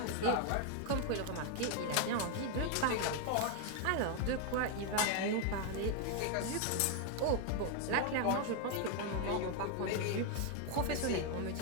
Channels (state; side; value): different; both; correlation 0.01